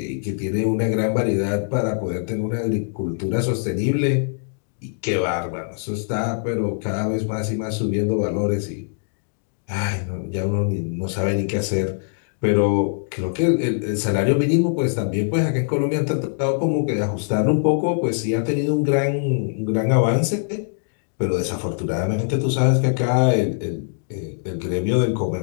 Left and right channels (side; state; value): right; silent; digital silence